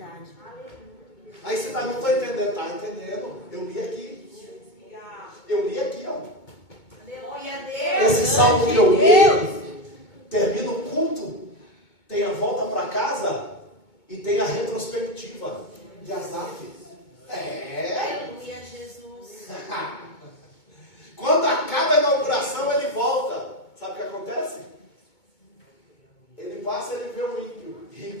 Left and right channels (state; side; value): late; right; 2.2 ms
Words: Aí você não está entendendo. Está entendendo? Eu li aqui. Eu li aqui, ó. Esse salmo que eu li, termina o culto, tem a volta para casa e tem a retrospectiva de Asaf. Aleluia, Jesus. Quando acaba a inauguração, ele volta. Sabe o que acontece? Ele passa e ele vê o ímpio,